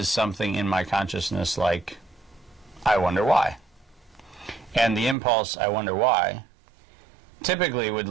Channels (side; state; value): left; drops out; at 5.2 s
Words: something in my consciousness like, I wonder why. And the impulse, I wonder why, typically would